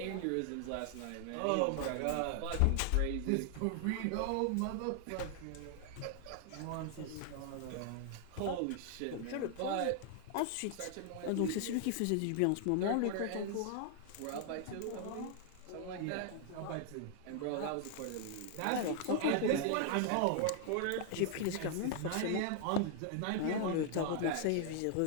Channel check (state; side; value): different; both; correlation 0.00